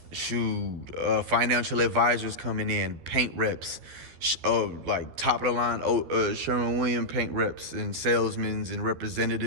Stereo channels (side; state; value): left; late; 12 ms